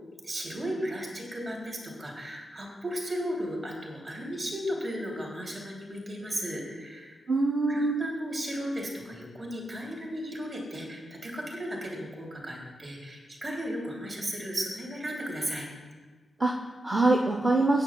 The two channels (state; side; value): normal; both; correlation 0.86